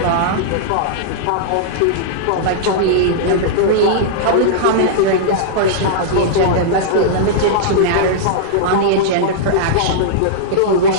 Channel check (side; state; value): both; different; correlation -0.02